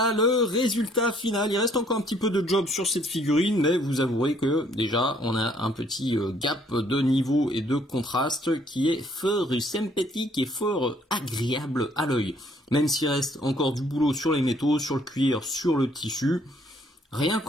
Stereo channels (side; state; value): both; normal; correlation 0.64